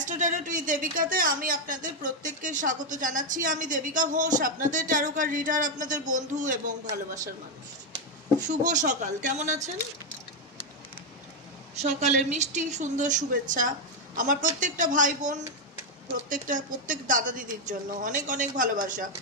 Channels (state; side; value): normal; both; correlation 0.03